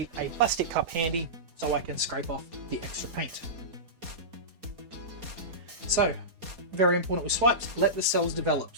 a plastic cup handy so I can scrape off the extra paint. So, very important with swipes, let the cells develop,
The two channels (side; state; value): left; late; 4.2 ms